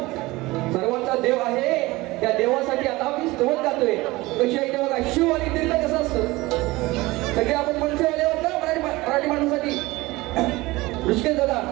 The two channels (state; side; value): quieter; left; 20.6 dB